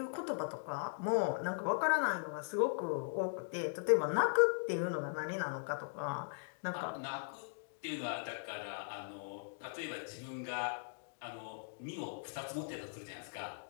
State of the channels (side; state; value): right; silent; digital silence